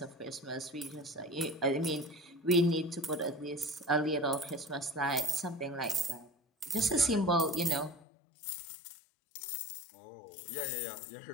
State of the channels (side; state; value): right; drops out; at 8.1 s